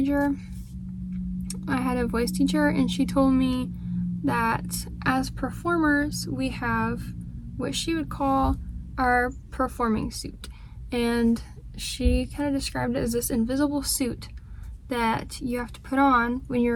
I had a voice teacher and she told me that as performers we have what she would call our performing suit, and she kind of described it as this invisible suit that you have to put on when you're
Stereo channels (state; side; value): identical; both; correlation 1.00